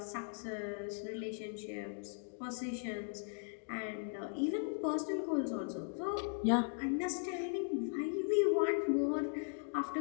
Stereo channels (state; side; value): silent; right; digital silence